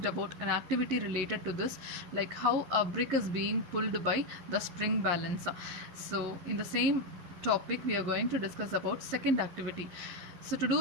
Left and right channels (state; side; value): late; left; 11 ms